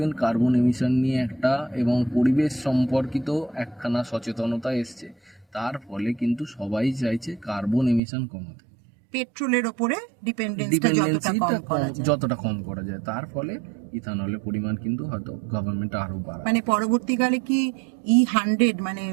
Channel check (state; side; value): drops out; left; at 8.0 s